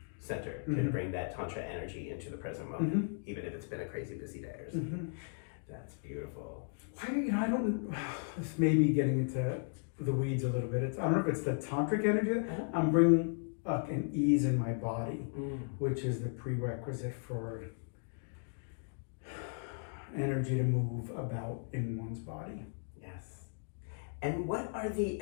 center, can bring that Tantra energy into the present moment, even if it's been a crazy busy day or something. That's beautiful. I don't, this may be getting into the weeds a little bit. I don't know if it's the tantric energy. I'm bringing up an ease in my body, which is the prerequisite for energy to move about in one's body. Yes. And what are the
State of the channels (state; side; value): silent; right; digital silence